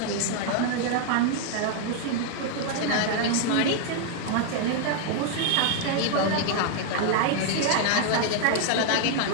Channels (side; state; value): both; different; correlation 0.00